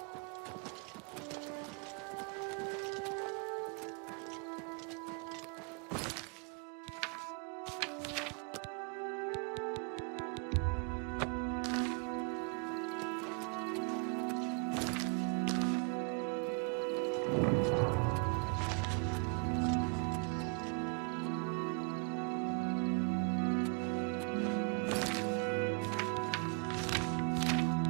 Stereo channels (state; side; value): quieter; left; 35.4 dB